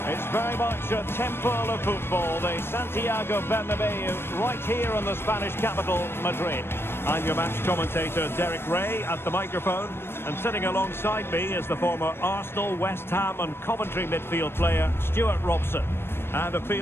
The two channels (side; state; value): right; late; 0.12 ms